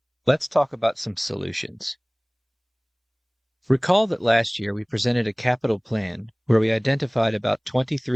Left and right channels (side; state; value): both; identical; correlation 1.00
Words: let's talk about some solutions. Recall that last year we presented a capital plan where we identified about